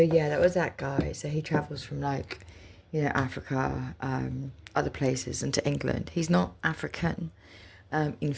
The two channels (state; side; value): identical; both; correlation 1.00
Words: yeah, that was that guy. So he travels from Africa, other places, and to England. He's not African. In